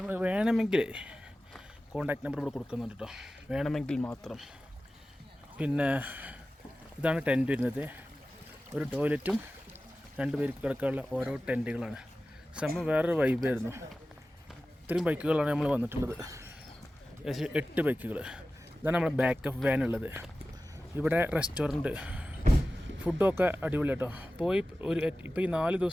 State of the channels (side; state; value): both; normal; correlation 0.95